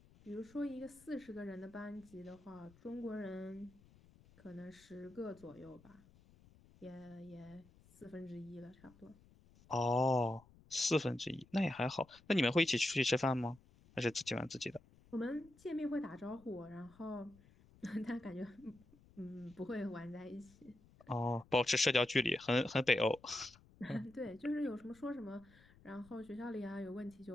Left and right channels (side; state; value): left; noise; rumble, 26 dB below the sound